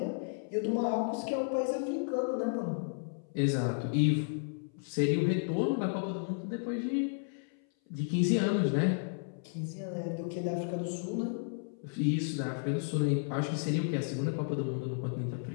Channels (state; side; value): silent; right; 56 dB below the other